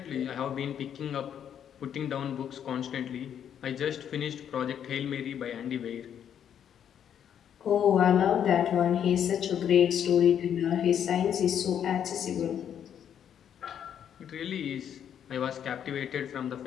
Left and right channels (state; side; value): quieter; right; 9.1 dB